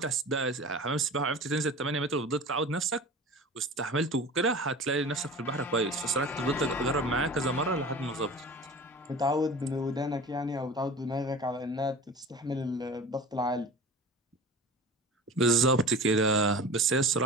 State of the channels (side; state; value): both; normal; correlation 0.36